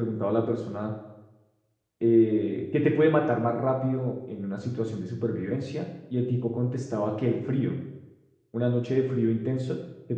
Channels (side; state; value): both; identical; correlation 1.00